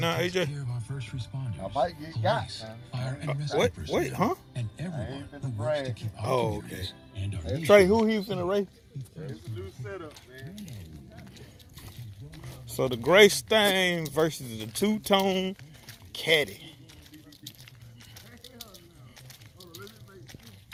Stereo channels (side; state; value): both; identical; correlation 1.00